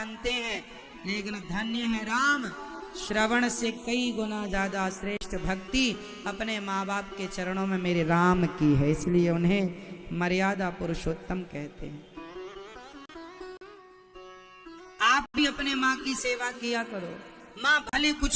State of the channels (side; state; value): both; identical; correlation 1.00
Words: हैं। लेकिन धन्य है राम, श्रवण से कई गुना ज्यादा श्रेष्ठ भक्ति अपने माँ बाप के चरणों में मेरे राम की है, इसलिए उन्हें मर्यादा पुरुषोत्तम कहते हैं। आप भी अपने माँ की सेवा किया करो। माँ भले